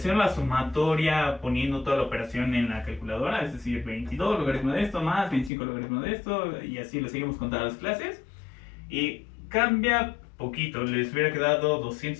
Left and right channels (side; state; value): right; drops out; at 5.5 s